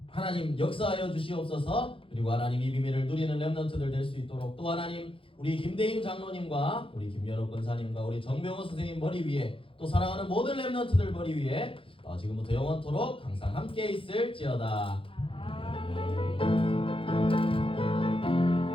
하나님 역사하여 주시옵소서. 그리고 하나님 이 비밀을 누리는 랩런트들 될 수 있도록 또 하나님 우리 김대임 장로님과 우리 김연옥 권사님과 우리 정병호 선생님 머리 위에 또 사랑하는 모든 랩런트들 머리 위에 지금부터 영원토록 항상 함께 있을지어다.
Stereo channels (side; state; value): right; late; 0.26 ms